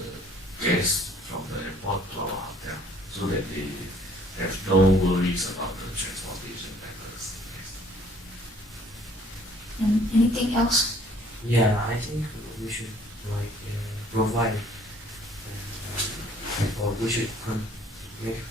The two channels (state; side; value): normal; both; correlation 0.58